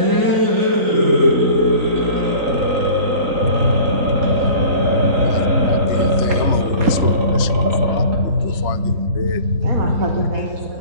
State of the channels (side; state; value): left; late; 3.3 ms